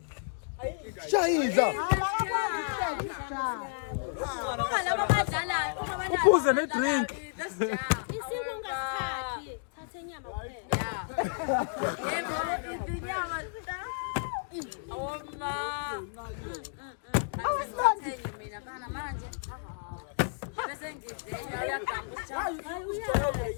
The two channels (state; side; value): silent; right; digital silence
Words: Shaiza. Uphuze ne drink. Isikungasikhaki thathe inyama kuphela. Yebo, inyama. Awoma. Ngisathenye mina kana manje. Bese ngidenya uyaganga